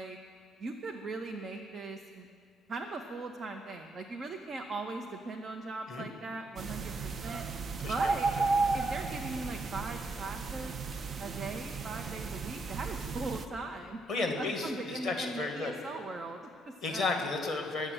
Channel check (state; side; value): normal; both; correlation 0.75